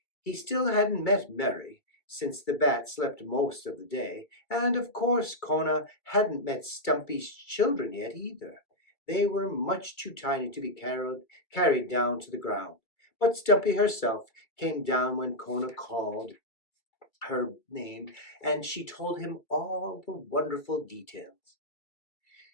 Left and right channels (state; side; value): late; right; 2.3 ms